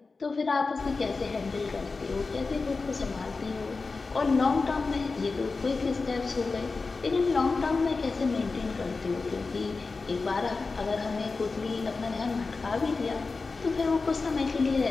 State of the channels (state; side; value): quieter; right; 4.1 dB